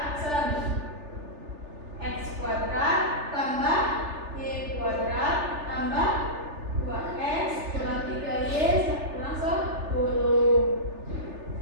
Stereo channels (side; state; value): left; late; 3.3 ms